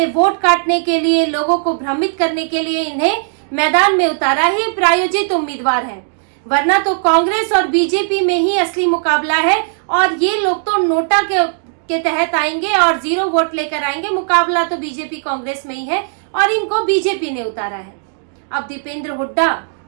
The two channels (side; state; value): left; silent; digital silence